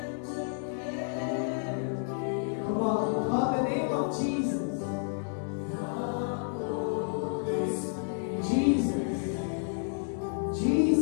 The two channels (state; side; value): silent; right; digital silence